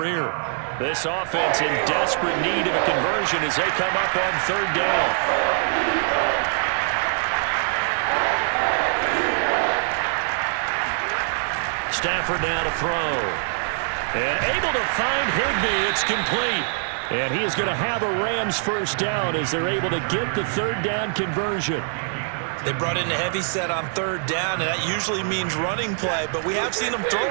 This offense in desperate need of a conversion as they come up on 3rd down. Stafford now to throw. And able to find Higbee. It's complete. And he is going to have a Rams first down as they're able to get the 3rd down conversion. They brought in a heavy set on 3rd down, and that usually means running play, but we have seen them throw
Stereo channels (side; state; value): left; silent; digital silence